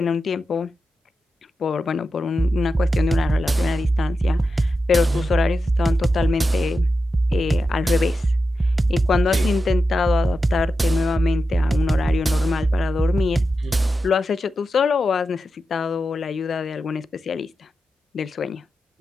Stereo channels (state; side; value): normal; both; correlation 0.90